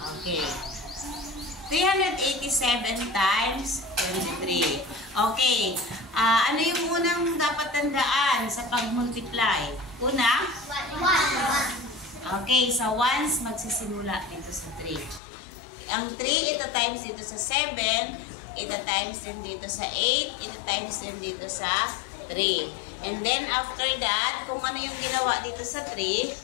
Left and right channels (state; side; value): drops out; right; at 15.2 s